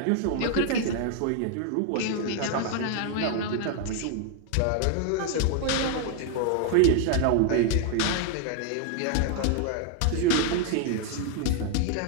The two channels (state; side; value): different; both; correlation 0.00